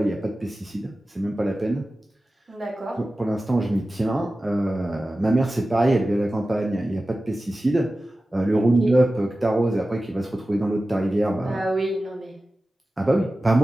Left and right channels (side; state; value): both; normal; correlation 0.95